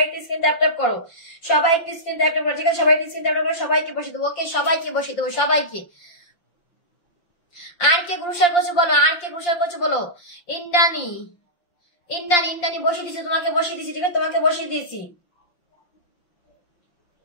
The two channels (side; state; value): right; late; 5.7 ms